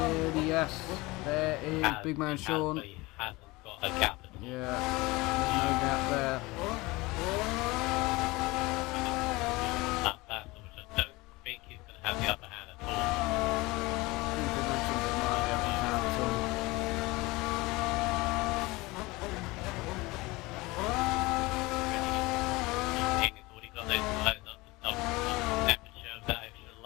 Yes. There is Big Man Sean. He hasn't got a gap at all. Yeah, there's no gap there. That battle, which I don't think he's going to have the upper hand at all. He's already got those lights up to double temperature of that extra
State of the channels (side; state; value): right; quieter; 22.3 dB